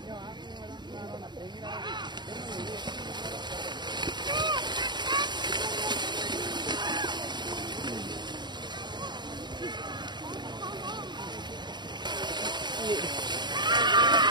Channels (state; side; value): late; left; 0.21 ms